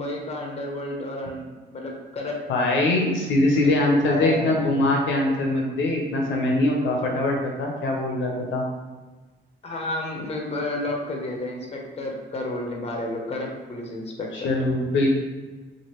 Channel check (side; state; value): both; normal; correlation 0.50